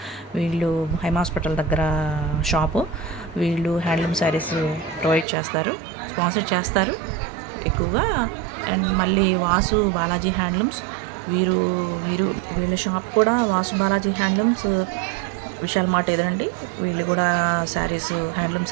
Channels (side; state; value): left; drops out; at 5.2 s